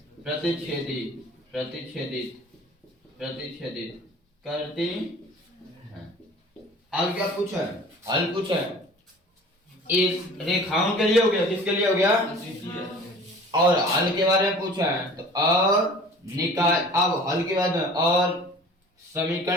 प्रतिच्छेदित करती हैं। अब क्या पूछा है, हल पूछा है, इस रेखाओं के लिए हो गया, किसके लिए हो गया और हल के बारे में पूछा है, तो अब हल के बाद में और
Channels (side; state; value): both; normal; correlation 0.45